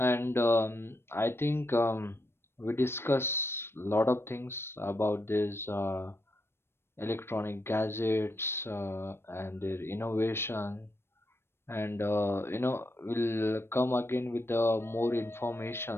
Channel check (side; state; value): right; late; 0.12 ms